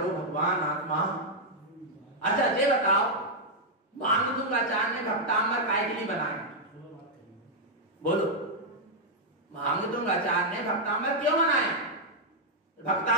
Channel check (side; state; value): both; normal; correlation -0.03